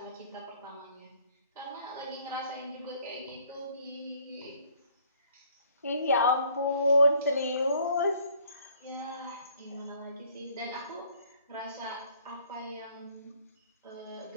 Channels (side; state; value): both; inverted; correlation -0.59